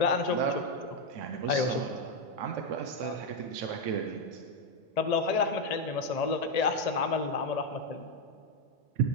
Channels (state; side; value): normal; both; correlation 0.04